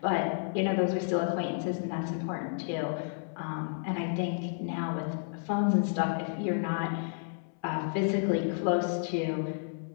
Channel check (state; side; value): silent; right; 57 dB below the other